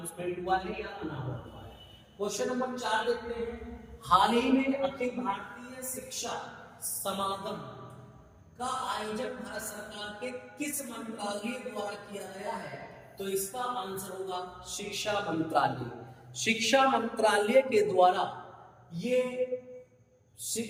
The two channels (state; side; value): identical; both; correlation 1.00